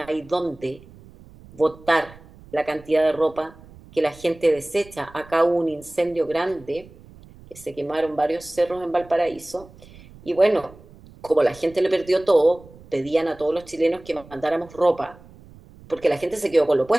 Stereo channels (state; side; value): noise; right; rumble, 22 dB below the sound